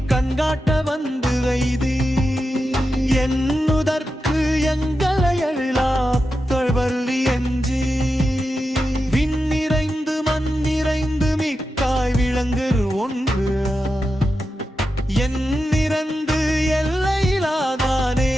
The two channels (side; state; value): both; normal; correlation 0.90